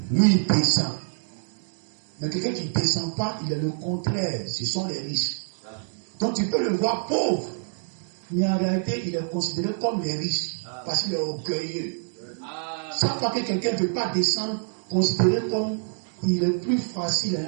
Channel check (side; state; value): left; silent; digital silence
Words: Lui, il descend. Mais quelqu'un qui ne descend pas, il est le contraire. Ce sont les riches. Donc, tu peux le voir pauvre. Mais en réalité, il est considéré comme les riches. Parce qu'il est orgueilleux. Chaque fois que quelqu'un ne veut pas descendre, considéré comme il est plus facile